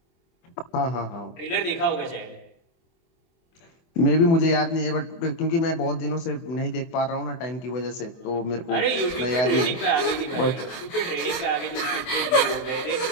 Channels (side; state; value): right; late; 24 ms